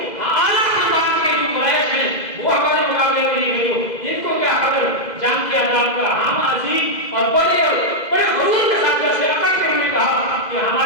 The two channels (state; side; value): late; right; 2.0 ms